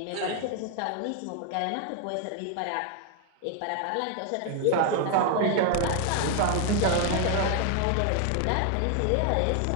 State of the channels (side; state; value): both; different; correlation 0.01